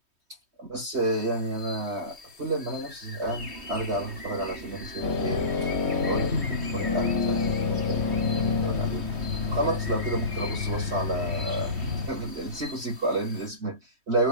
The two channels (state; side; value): late; left; 3.2 ms